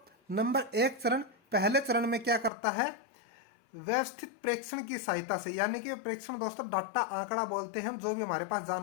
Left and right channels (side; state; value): right; drops out; at 2.5 s